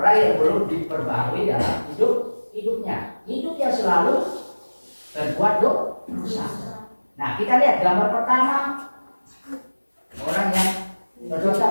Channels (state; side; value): inverted; both; correlation -1.00